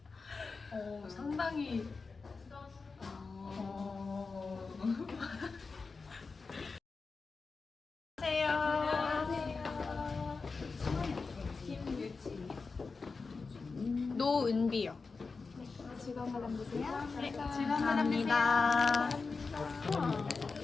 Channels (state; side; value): quieter; right; 4.4 dB